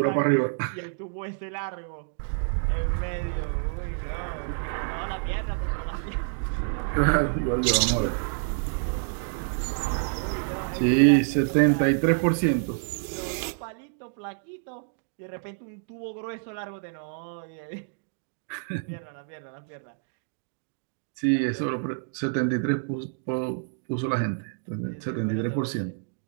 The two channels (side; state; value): left; silent; digital silence